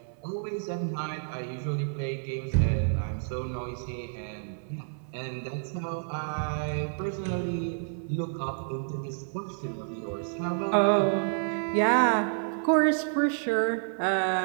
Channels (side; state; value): left; silent; 58 dB below the other